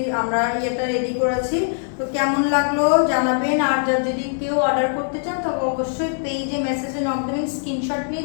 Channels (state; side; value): silent; right; digital silence